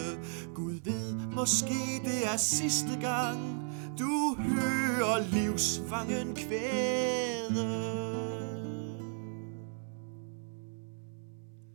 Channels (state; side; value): silent; left; 55 dB below the other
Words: Gud ved, måske det er sidste gang du hører livsfangen kvæde.